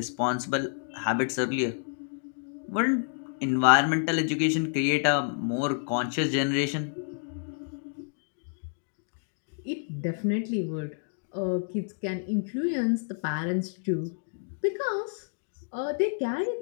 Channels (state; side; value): silent; right; digital silence